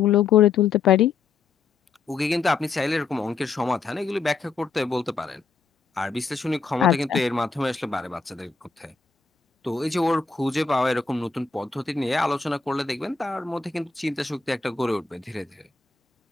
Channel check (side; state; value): right; quieter; 4.8 dB